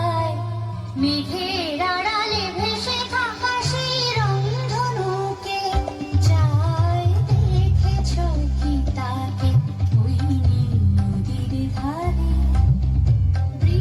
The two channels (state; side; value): identical; both; correlation 1.00